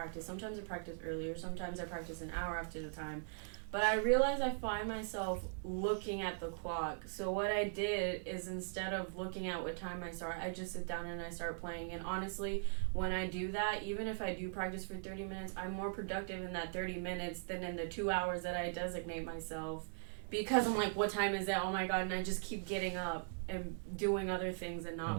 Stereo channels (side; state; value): left; silent; digital silence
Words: Sometimes I practice earlier, sometimes I practice an hour after the time. But I realize I find myself looking at the clock. So what I did is, instead of looking at what time I start, I just sit down and I start playing. And honestly, when I do that, even if I do practice for 30 minutes, I'm more productive in that 30 minutes than in the 2 hours that I designate myself. Because I'm what time is it? Oh my God, and I just keep getting up and doing other things and not